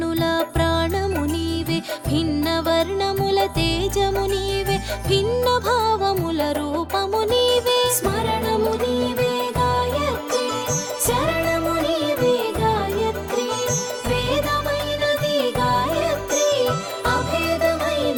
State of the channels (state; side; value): identical; both; correlation 1.00